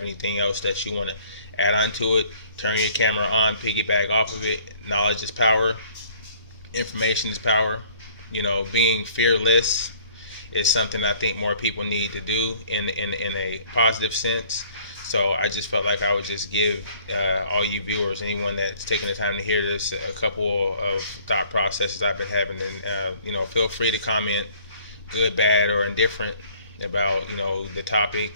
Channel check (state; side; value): inverted; both; correlation -0.56